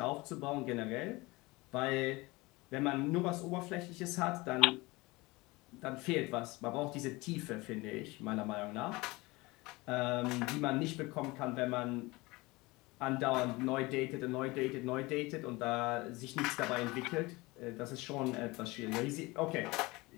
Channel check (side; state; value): right; quieter; 22.7 dB